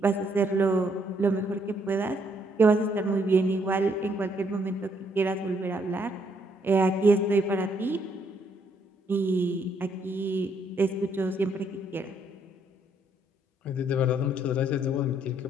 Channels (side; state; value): both; normal; correlation 0.71